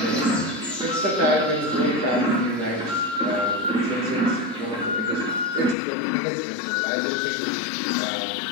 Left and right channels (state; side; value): drops out; right; at 5.8 s